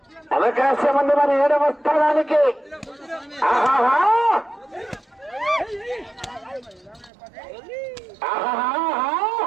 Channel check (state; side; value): drops out; left; at 7.1 s